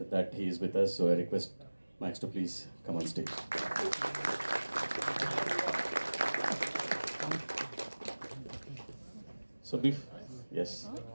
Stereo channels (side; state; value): both; inverted; correlation -1.00